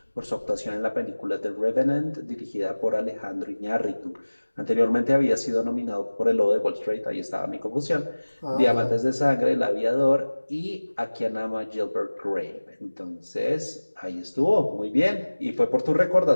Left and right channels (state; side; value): inverted; both; correlation -1.00